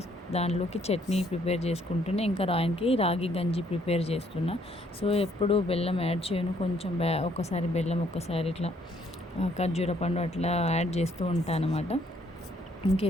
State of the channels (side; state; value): both; normal; correlation 0.66